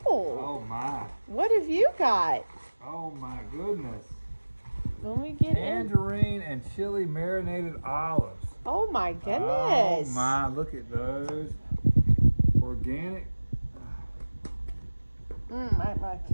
my. What have you got? Oh my goodness. Let me get in. Tangerine and chili marinated olives. Oh my Oh goodness. my, look at those. Organic My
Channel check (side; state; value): both; inverted; correlation -1.00